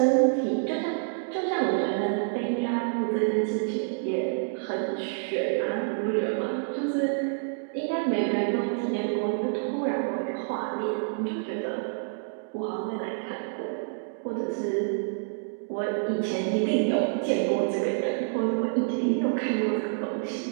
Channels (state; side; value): silent; left; digital silence